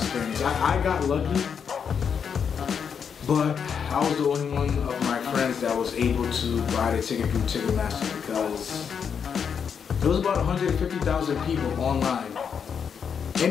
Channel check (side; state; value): right; quieter; 7.0 dB